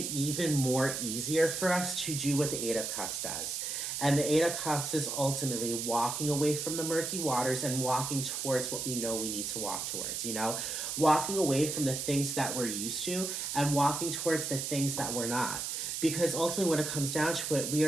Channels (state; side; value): noise; right; hiss, 3 dB below the sound